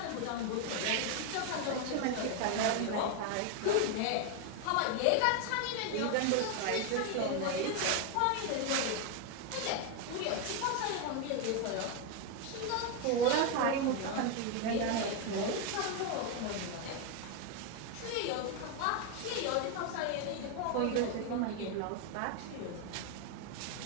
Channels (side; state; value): both; different; correlation 0.01